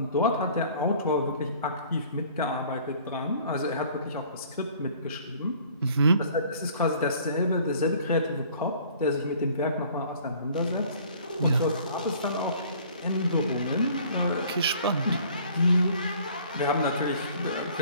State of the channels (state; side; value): inverted; both; correlation -0.53